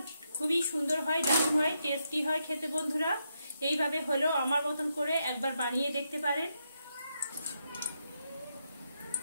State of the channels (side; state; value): both; inverted; correlation -0.82